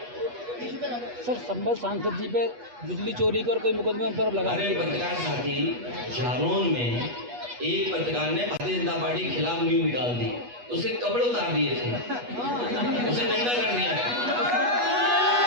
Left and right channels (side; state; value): left; late; 8.2 ms